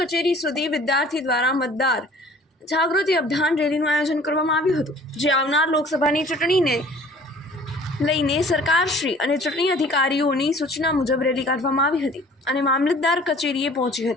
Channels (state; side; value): normal; both; correlation 0.50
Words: કચેરી સુધી વિદ્યાર્થી દ્વારા મતદાર જાગૃતિ અભિયાન રેલીનું આયોજન કરવામાં આવ્યું હતું, જે આવનાર લોકસભાની ચૂંટણીને લઈને સરકારશ્રી અને ચૂંટણી અધિકારીઓની સૂચના મુજબ રેલી કાઢવામાં આવી હતી અને મામલતદાર કચેરીએ પહોંચી